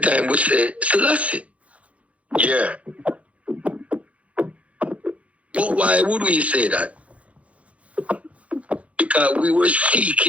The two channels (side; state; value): left; late; 0.064 ms